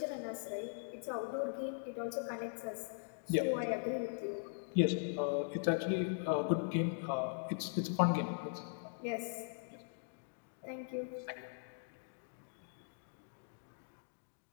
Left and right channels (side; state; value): right; silent; digital silence